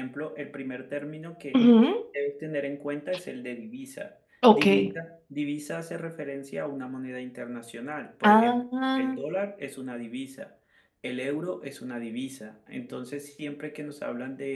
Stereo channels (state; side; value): identical; both; correlation 1.00